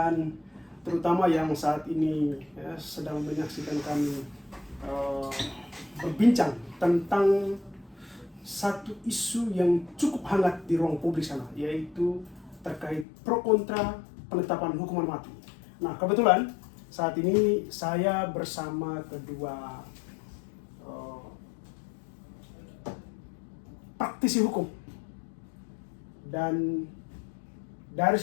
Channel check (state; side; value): drops out; right; at 13.1 s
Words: terutama yang saat ini sedang menyaksikan kami eh, berbincang tentang satu isu yang cukup hangat di ruang publik sana, yaitu terkait pro kontra penetapan hukuman mati. Nah, kebetulan saat ini saya bersama kedua eh, praktisi hukum. Dan dari